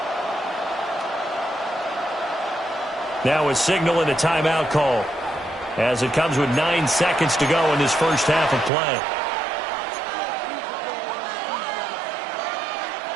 Now a signal and a timeout call as it comes with 9 seconds to go in this first half of play.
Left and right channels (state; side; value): drops out; left; at 8.7 s